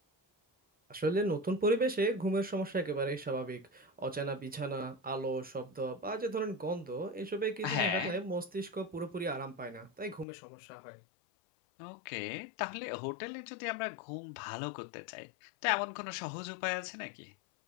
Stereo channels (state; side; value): drops out; right; at 10.2 s